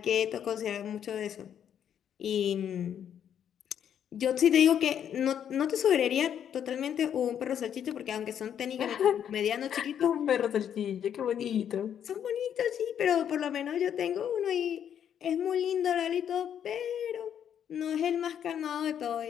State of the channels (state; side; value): quieter; right; 9.1 dB